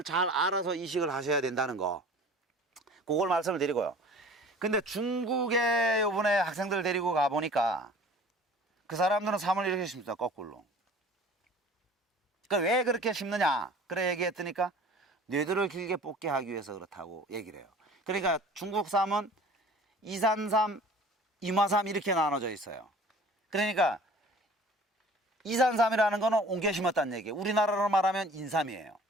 잘 알아서 이식을 하셔야 된다는 거. 그걸 말씀을 드리고요. 근데 중국에 요번에 학생들 데리고 가보니까 그 사람들은 삼을 이렇게 심습니다. 거꾸로. 그 왜 그렇게 심느냐? 그래 얘기했더니까 뇌들을 길게 뽑게 하기 위해서 그렇다고 얘기를 해요. 그러니까 중국 쌈은 이산삼, 임화삼 이렇게 나눠져 있어요. 그러니까 이산삼이라는 거는 옮겨 심었다는 얘기예요. 우리나라로 말하면 인삼이에요.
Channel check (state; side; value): normal; both; correlation 0.46